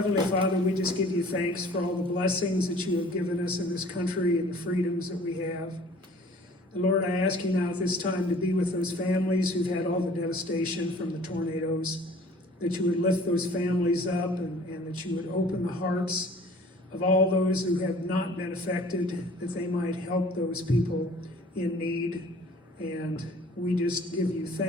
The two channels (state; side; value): normal; both; correlation 0.51